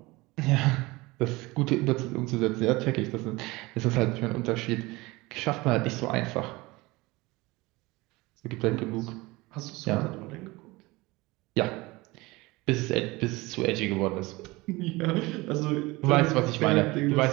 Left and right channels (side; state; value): left; quieter; 22.0 dB